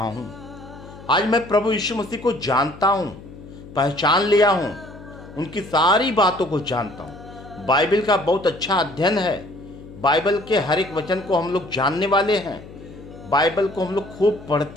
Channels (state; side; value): noise; left; hum, 17 dB below the sound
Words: हूं। आज मैं प्रभु यीशु मसीह को जानता हूं, पहचान लिया हूं, उनकी सारी बातों को जानता हूं। बाइबल का बहुत अच्छा अध्ययन है। बाइबल के हर एक वचन को हम लोग जानने वाले हैं। बाइबल को हम लोग खूब